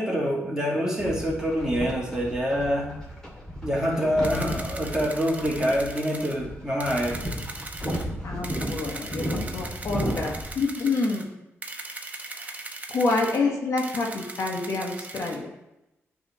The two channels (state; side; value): normal; both; correlation 0.78